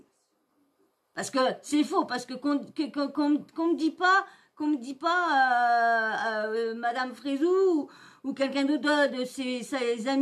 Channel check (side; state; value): both; identical; correlation 1.00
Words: parce que c'est faux, parce que qu'on me dit pas, Madame Frézou ou quelqu'un d'autre de ses